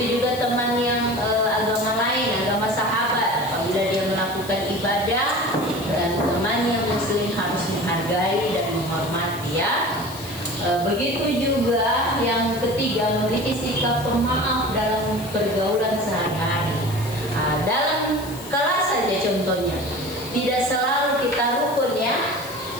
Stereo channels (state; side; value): noise; left; hiss, 16 dB below the sound